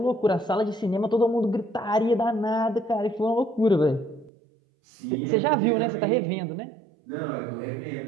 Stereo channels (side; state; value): left; drops out; at 4.3 s